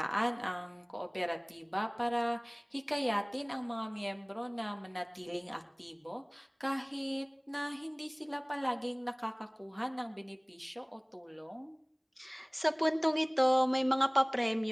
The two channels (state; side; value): identical; both; correlation 1.00